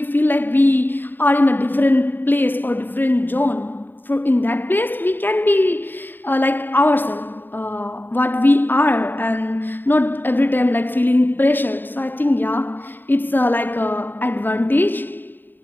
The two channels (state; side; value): late; right; 0.093 ms